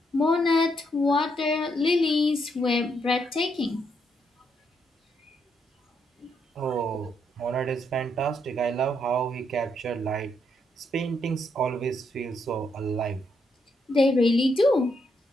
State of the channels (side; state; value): both; normal; correlation 0.77